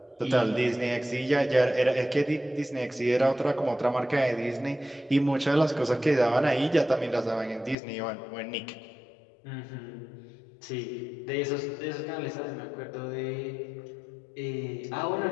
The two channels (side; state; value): right; drops out; at 7.8 s